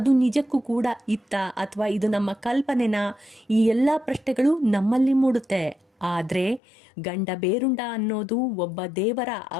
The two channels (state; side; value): drops out; right; at 6.6 s